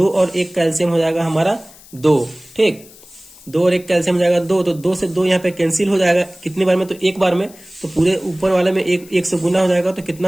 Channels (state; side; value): noise; left; hiss, 22 dB below the sound